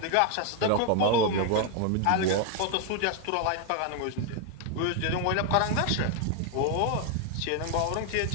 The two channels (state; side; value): different; both; correlation 0.00